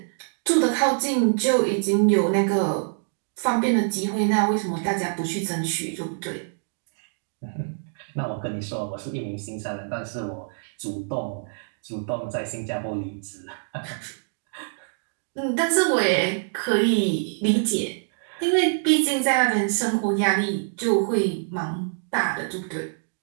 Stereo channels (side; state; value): left; silent; digital silence